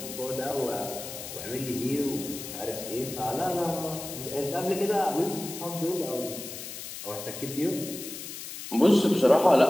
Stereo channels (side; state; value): left; noise; hiss, 10 dB below the sound